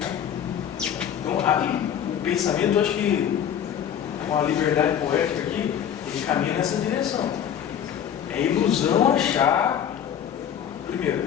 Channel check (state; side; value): quieter; right; 9.2 dB